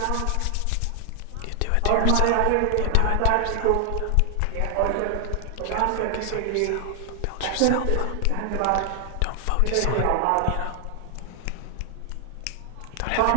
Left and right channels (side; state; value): both; different; correlation 0.00